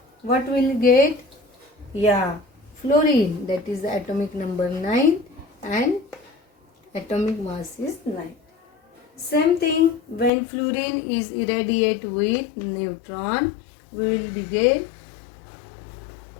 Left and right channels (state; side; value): drops out; right; at 10.3 s